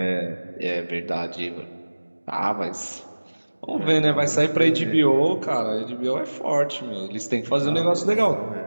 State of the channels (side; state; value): both; inverted; correlation -1.00